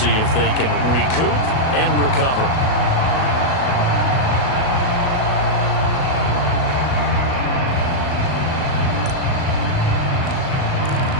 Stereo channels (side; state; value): right; late; 37 ms